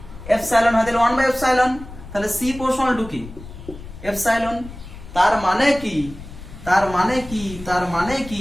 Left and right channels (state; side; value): noise; left; rumble, 15 dB below the sound